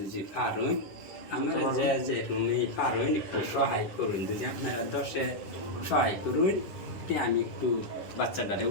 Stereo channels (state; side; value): late; right; 10 ms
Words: পারুন আমরা যে রুমে পারুন একটু সহায় করুন, যদি আপনারা 10-এ সহায় করুন তে আমি একটু বাচ্চাটারে